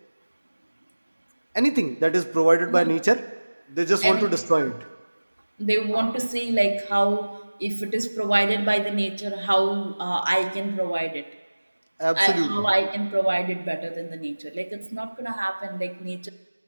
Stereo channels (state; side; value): inverted; both; correlation -1.00